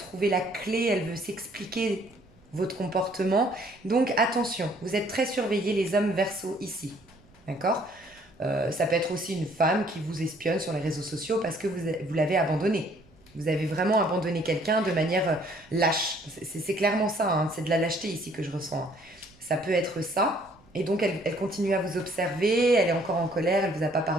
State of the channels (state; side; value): noise; right; rumble, 29 dB below the sound